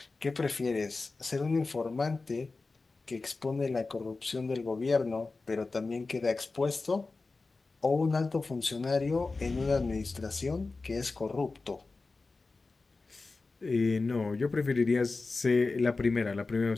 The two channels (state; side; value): quieter; right; 3.8 dB